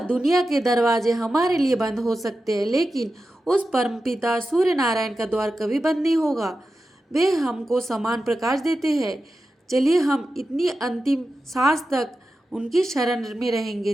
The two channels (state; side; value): normal; both; correlation 0.92